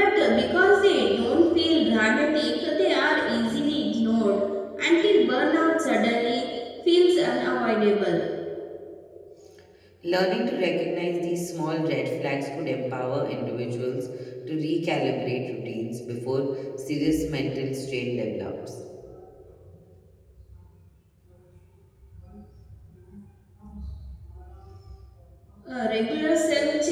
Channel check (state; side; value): identical; both; correlation 1.00